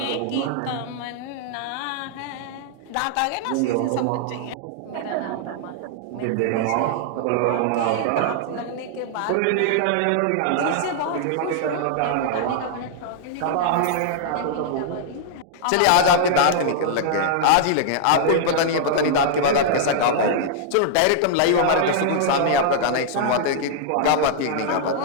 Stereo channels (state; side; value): different; both; correlation -0.01